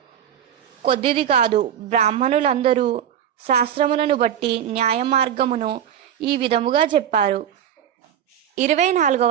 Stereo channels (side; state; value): left; quieter; 9.8 dB